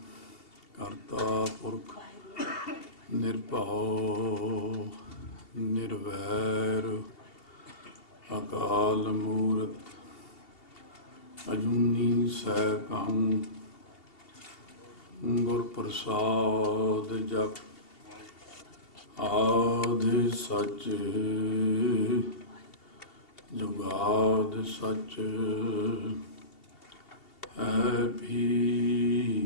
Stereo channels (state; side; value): late; right; 2.7 ms